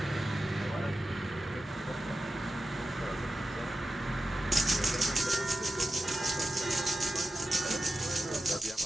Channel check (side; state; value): both; normal; correlation 0.92